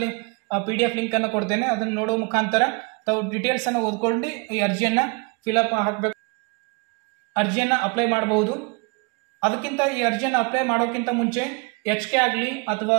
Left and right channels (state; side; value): quieter; left; 30.8 dB